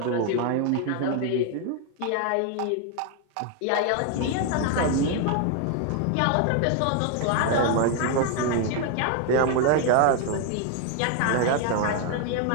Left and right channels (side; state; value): both; different; correlation 0.01